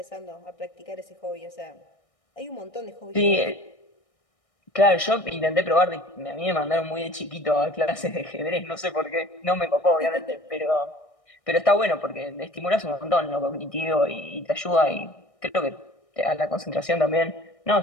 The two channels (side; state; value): right; late; 1.6 ms